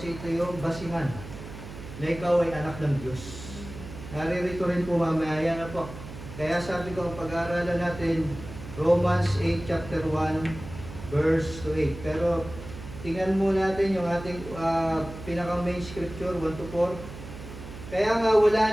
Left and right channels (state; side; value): noise; right; hum, 13 dB below the sound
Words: ito yung basihan na ikaw ay anak ng Diyos. Naririto rin po mamaya yan na po. Kaya sabi ko, ang pag-aaralan natin, Romans 8, chapter 1, verse 8. Pero tingnan mo natin yung ating pinaka-main scripture, 1-4. Kaya nga wala